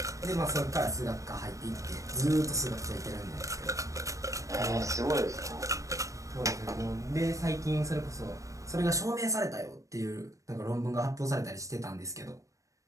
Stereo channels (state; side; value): late; left; 0.16 ms